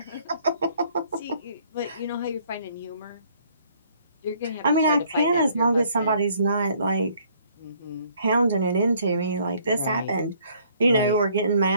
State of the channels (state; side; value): inverted; both; correlation -0.63